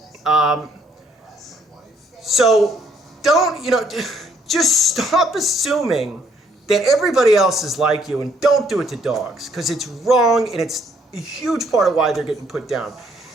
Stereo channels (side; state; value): both; normal; correlation 0.67